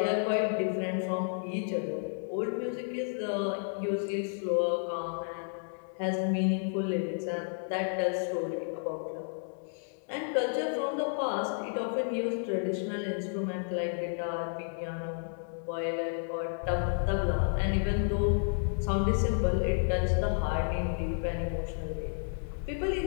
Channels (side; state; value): right; silent; digital silence